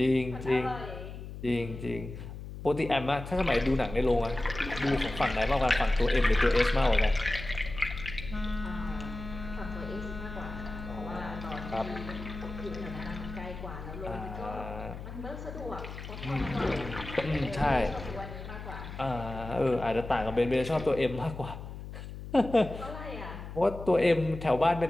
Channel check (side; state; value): left; noise; hum, 10 dB below the sound